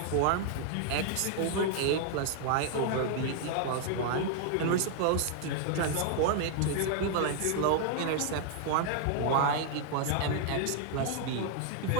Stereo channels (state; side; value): different; both; correlation 0.00